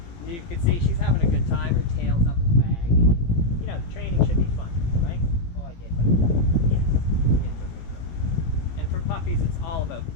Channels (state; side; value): late; right; 18 ms